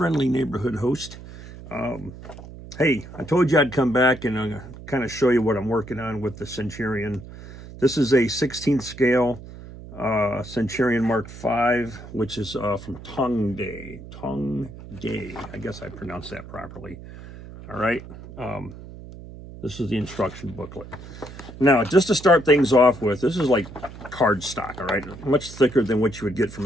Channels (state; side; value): noise; right; hum, 15 dB below the sound